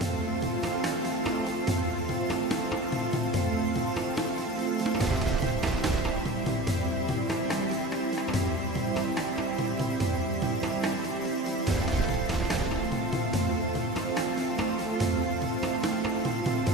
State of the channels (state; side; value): normal; both; correlation 0.38